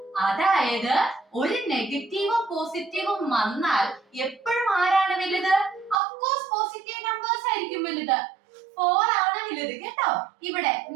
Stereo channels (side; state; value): left; drops out; at 6.0 s